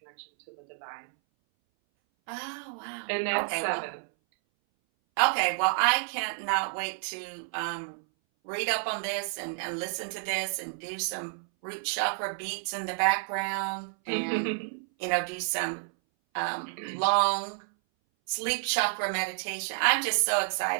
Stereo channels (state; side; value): silent; left; 58 dB below the other